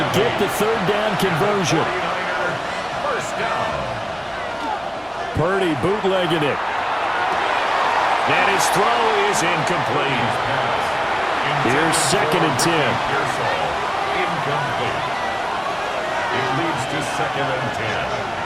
get the 3rd down conversion. First down. Purdy bootlegging it. And his throw is incomplete. Here's 2nd and 10. Incomplete. It leads to 2nd and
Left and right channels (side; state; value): both; identical; correlation 1.00